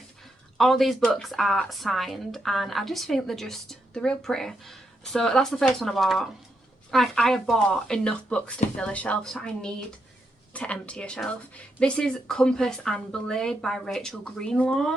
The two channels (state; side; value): normal; both; correlation 0.81